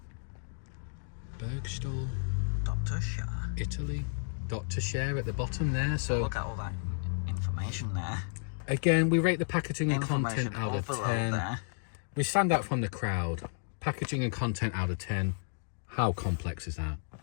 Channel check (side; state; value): right; silent; digital silence